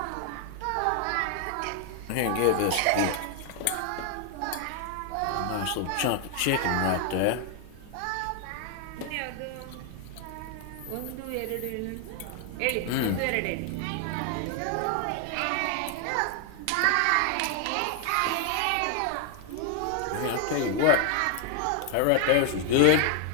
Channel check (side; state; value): both; different; correlation 0.00